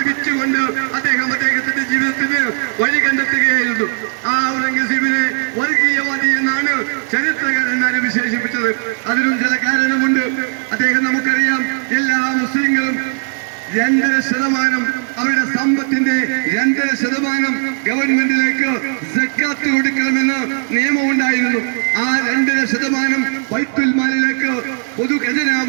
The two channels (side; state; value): left; silent; digital silence